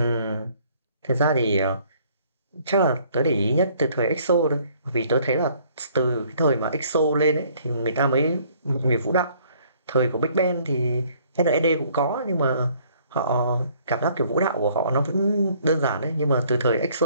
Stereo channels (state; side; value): inverted; both; correlation -0.61